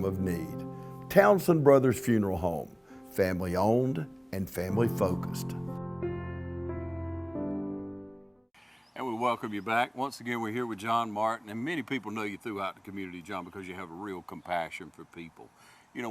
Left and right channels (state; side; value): identical; both; correlation 1.00